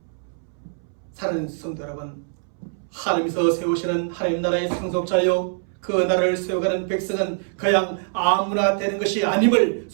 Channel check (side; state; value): left; silent; 63 dB below the other